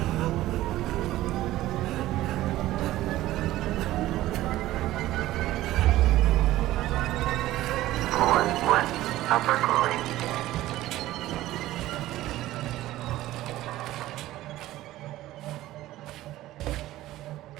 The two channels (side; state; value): left; quieter; 15.6 dB